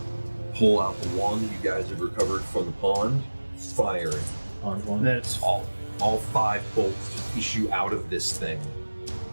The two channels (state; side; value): inverted; both; correlation -1.00